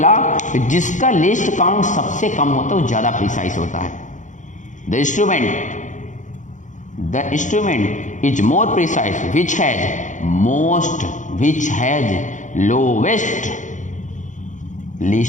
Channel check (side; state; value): right; late; 0.36 ms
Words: कि जिसका लिस्ट काउंट सबसे कम होता है वो ज़्यादा प्रिसाइज होता है। The instrument is more precise which has lowest